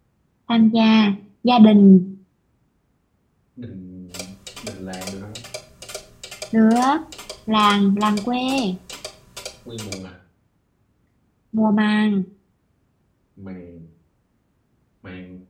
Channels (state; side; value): identical; both; correlation 1.00